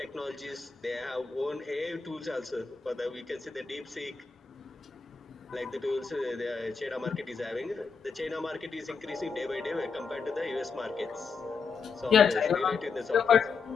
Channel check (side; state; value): right; quieter; 5.2 dB